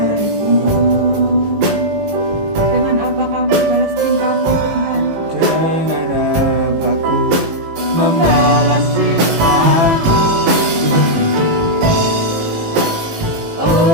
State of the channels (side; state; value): left; late; 18 ms